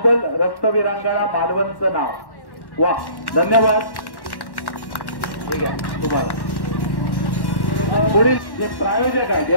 रक्तवीरांगणा मालवणचं नाव वा धन्यवाद ठीक आहे तुम्हाला पुढील जे प्रायोजक आहेत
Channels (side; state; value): right; late; 1.1 ms